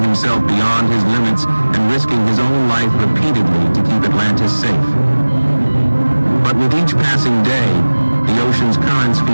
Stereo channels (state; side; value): inverted; both; correlation -1.00